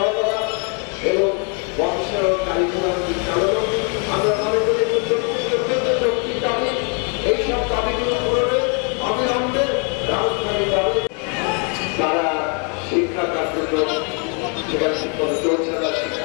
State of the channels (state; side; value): quieter; right; 37.6 dB